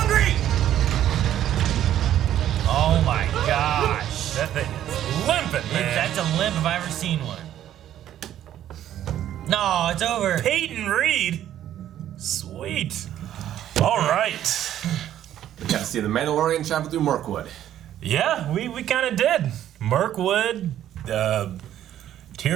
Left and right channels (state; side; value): quieter; left; 11.6 dB